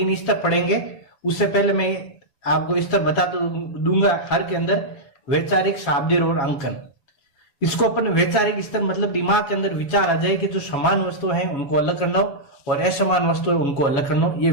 स्तर पढ़ेंगे, उससे पहले मैं आपको स्तर बता दूंगा हर के अंदर, वैचारिक, शाब्दिक और अंकन। इसको अपन वैचारिक स्तर मतलब दिमाग के अंदर विचार आ जाए कि जो समान वस्तु है उनको अलग करना हो और असमान वस्तु है उनको अलग करना हो, ये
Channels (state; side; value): late; right; 7.0 ms